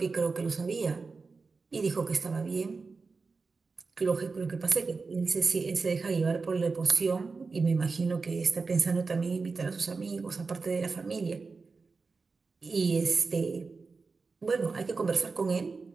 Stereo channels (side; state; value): left; quieter; 4.4 dB